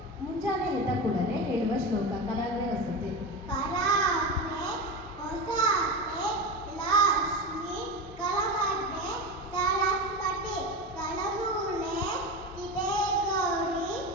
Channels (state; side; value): normal; both; correlation 0.22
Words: ಮುಂಜಾನೆ ಎದ್ದ ಕೂಡಲೇ ಹೇಳುವ ಶ್ಲೋಕ ಕರಾಗ್ರೆ ವಸತಿ. ಕರಾಗ್ರೆ ಹೊಸತೆ ಲಕ್ಷ್ಮಿ ಕಲಮಡ್ಡೆ ಸರಸ್ವತಿ ಕಳಮೂಲೆ ಚಿತೆ ಗೌರಿ